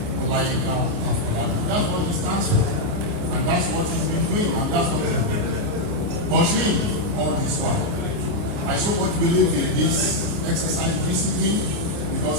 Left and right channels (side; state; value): left; late; 29 ms